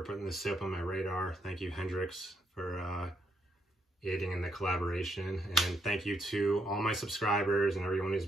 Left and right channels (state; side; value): normal; both; correlation 0.76